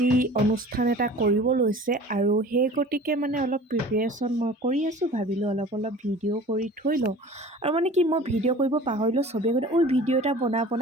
অনুষ্ঠান এটা কৰিব লৈছে আৰু সেই গতিকে অলপ প্ৰিপেৰেশ্যন মই কৰি আছোঁ। ভাবিলোঁ অলপ ভিডিঅ' কৰি থৈ লওঁ আৰু কি মই ভিডিঅ' কৰিব পাহৰিলোঁ। চবেই গ'লে ভিডিঅ' এটা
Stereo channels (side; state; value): both; normal; correlation 0.43